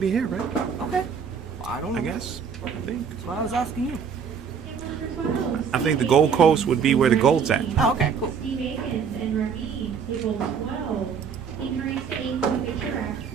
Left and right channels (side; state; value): left; quieter; 6.6 dB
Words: be here, right? Okay. Well, I don't know. I guess. I think. That's why I was asking you. Game number 12. I think the Gold Coast would be where the gold's at. Oh, okay, cool. Steve Akins and Rami, table 12. You can raise to 8 with a picture rack.